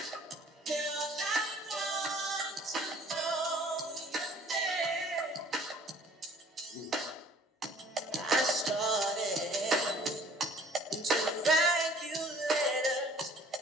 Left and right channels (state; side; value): normal; both; correlation 0.53